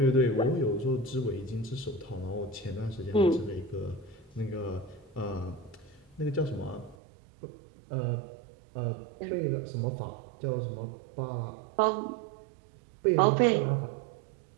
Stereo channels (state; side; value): drops out; left; at 7.0 s